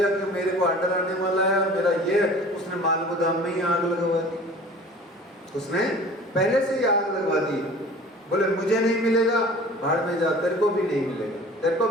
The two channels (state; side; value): normal; both; correlation 0.44